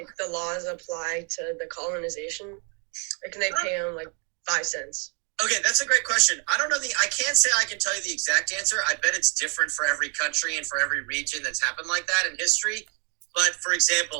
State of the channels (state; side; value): quieter; left; 37.9 dB